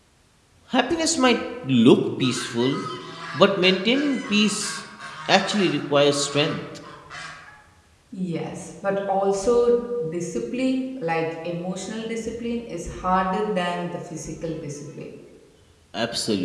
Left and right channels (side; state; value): both; identical; correlation 1.00